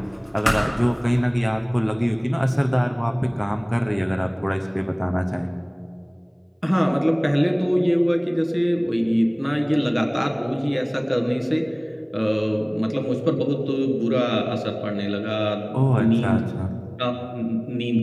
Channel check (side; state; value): both; identical; correlation 1.00